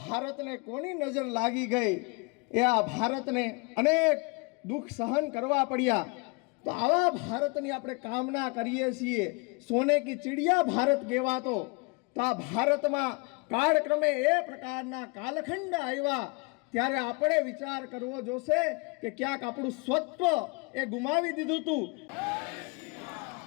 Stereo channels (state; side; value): quieter; right; 29.7 dB